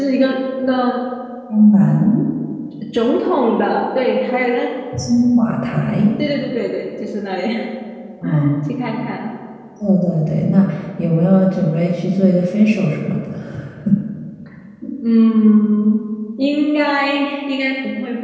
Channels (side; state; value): both; identical; correlation 1.00